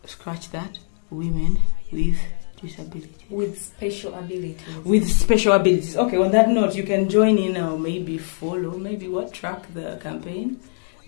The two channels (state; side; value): silent; right; digital silence